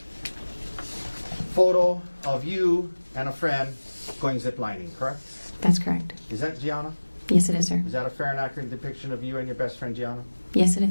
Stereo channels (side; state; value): both; inverted; correlation -1.00